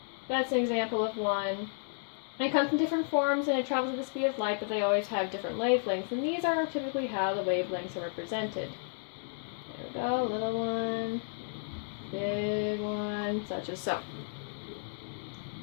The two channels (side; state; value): right; silent; digital silence